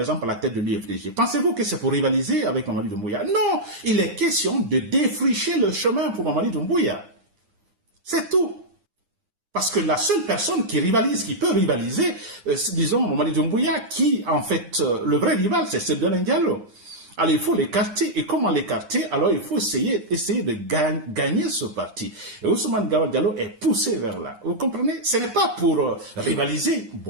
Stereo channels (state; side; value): late; left; 9.8 ms